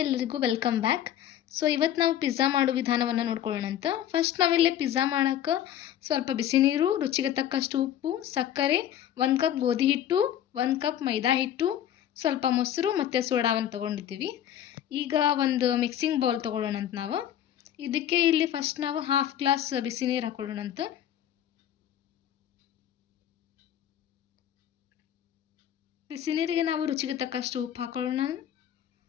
ಎಲ್ಲರಿಗೂ welcome back. So ಇವತ್ತು ನಾವು ಪಿಜ್ಜಾ ಮಾಡೋ ವಿಧಾನವನ್ನು ನೋಡ್ಕೊಳ್ಳೋಣ ಅಂತ. ಫಸ್ಟ್ ನಾವಿಲ್ಲಿ ಪಿಜ್ಜಾ ಮಾಡೋಕ್ಕೆ ಸ್ವಲ್ಪ ಬಿಸಿ ನೀರು, ರುಚಿಗೆ ತಕ್ಕಷ್ಟು ಉಪ್ಪು, ಸಕ್ಕರೆ, 1 ಕಪ್ ಗೋಧಿ ಹಿಟ್ಟು, 1 ಕಪ್ ಮೈದಾ ಹಿಟ್ಟು, ಸ್ವಲ್ಪ ಮೊಸರು ಮತ್ತು ಸೋಡಾವನ್ನು ತೊಗೊಂಡಿದ್ದೀವಿ. ಈಗ ಒಂದು ಮಿಕ್ಸಿಂಗ್ ಬೌಲ್ ತೊಗೊಳ್ಳೋಣ ಅಂತ ನಾವು. ಇದಕ್ಕೆ ಇಲ್ಲಿ ಫಸ್ಟ್ ನಾವು 1/2 ಗ್ಲಾಸ್ ಬಿಸಿ ನೀರು ಹಾಕೊಳ್ಳೋಣ ಅಂತ. ಬಿಸಿ ನೀರಿಗೆ ನಾವು ರುಚಿಗೆ ತಕ್ಕಷ್ಟು ಉಪ್ಪು ಹಾಕೊಳ್ಳೋಣ.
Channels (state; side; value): quieter; right; 11.0 dB